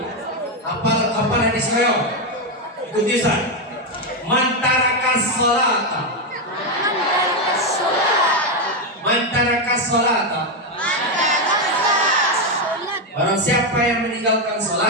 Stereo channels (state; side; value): normal; both; correlation 0.06